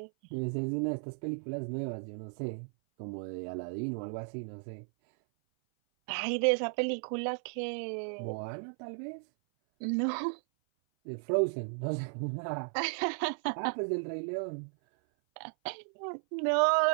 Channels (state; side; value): silent; left; 55 dB below the other